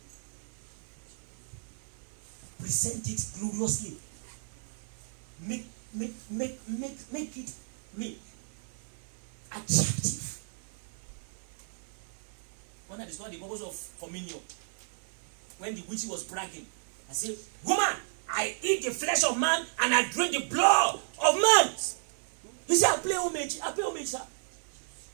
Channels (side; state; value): left; silent; 56 dB below the other